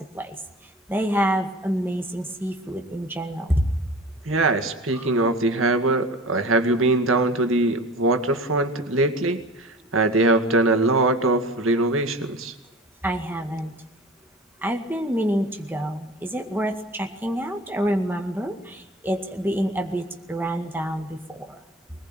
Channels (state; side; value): normal; both; correlation 0.39